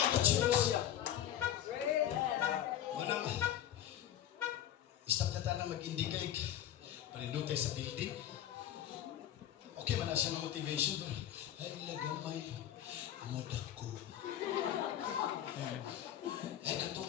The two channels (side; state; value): right; quieter; 11.3 dB